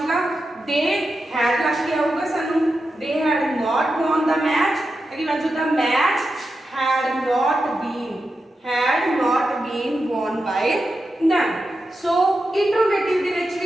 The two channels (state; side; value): normal; both; correlation 0.89